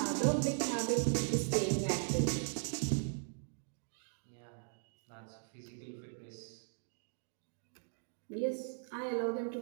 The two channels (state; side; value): silent; left; digital silence